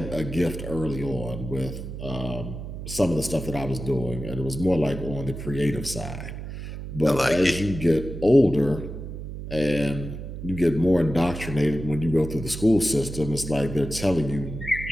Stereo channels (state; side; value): noise; right; hum, 9 dB below the sound